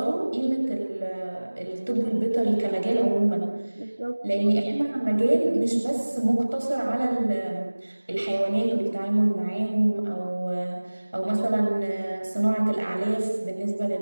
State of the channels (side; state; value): both; inverted; correlation -1.00